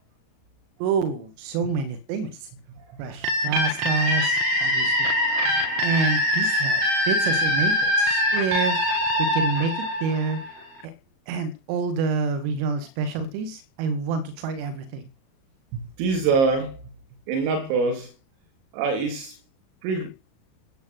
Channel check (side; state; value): left; late; 37 ms